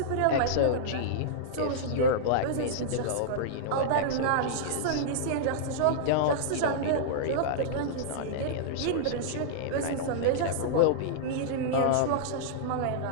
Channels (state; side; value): different; both; correlation -0.02